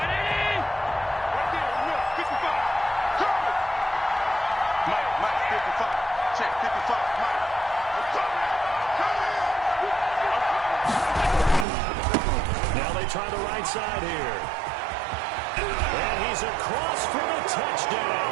Now they try the right side here. And he's across for the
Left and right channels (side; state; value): left; drops out; at 11.7 s